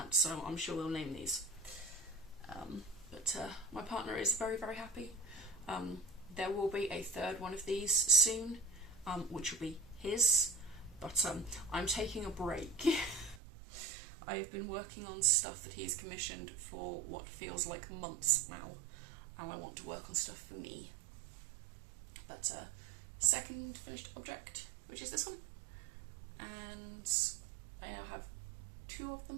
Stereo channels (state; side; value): drops out; left; at 13.4 s